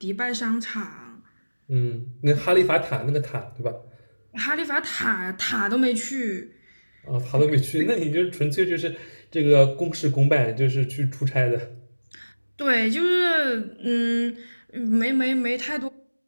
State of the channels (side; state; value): both; inverted; correlation -1.00